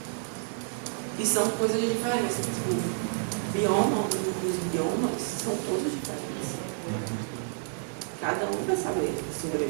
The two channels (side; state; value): left; silent; digital silence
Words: E são coisas diferentes. O bioma, os biomas são todos diferentes. Cada um vai saber